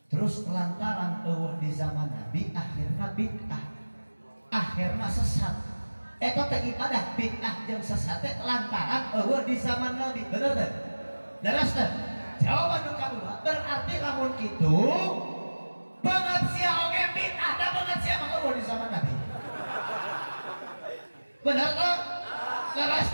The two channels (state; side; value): inverted; both; correlation -1.00